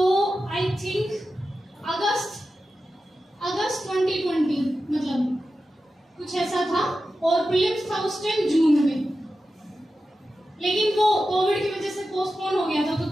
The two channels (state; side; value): normal; both; correlation 0.92